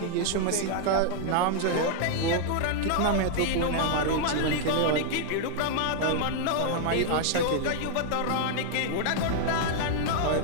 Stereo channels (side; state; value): both; different; correlation 0.00